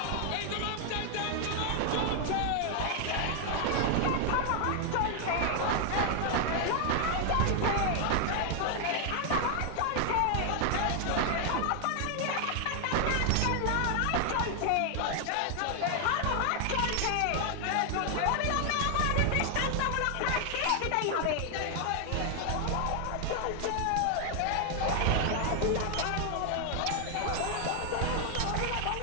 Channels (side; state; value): both; different; correlation 0.00